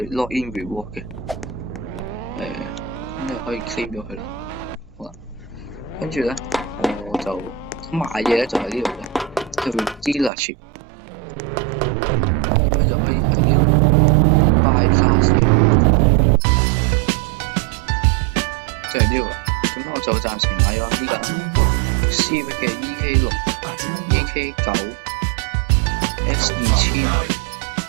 lock in reward 嘅，咁你可以 claim 咗佢啦。好啦，跟住咧我就買嘢咧就喺呢度嘅，叫 dealership， 咁就可以喺呢度 buy cars。就係呢個，咁我就暫時買咗呢架 Civic 嘅 EK6、EK9、S2000、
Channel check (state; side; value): drops out; left; at 10.3 s